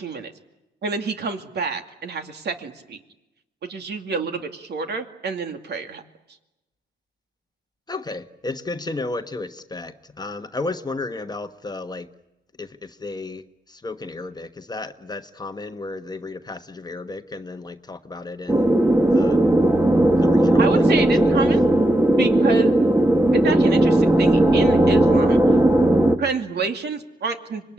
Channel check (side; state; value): both; normal; correlation 0.83